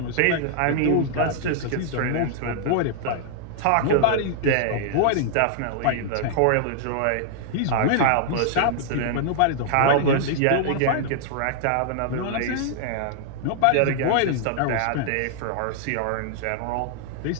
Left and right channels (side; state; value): both; different; correlation -0.01